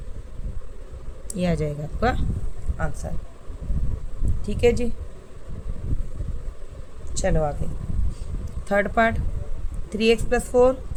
ये आ जाएगा आपका आंसर। ठीक है जी, चलो आगे। Third part, 3x + 4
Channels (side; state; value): both; identical; correlation 1.00